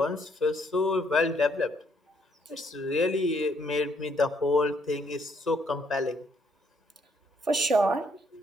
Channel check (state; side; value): normal; both; correlation 0.70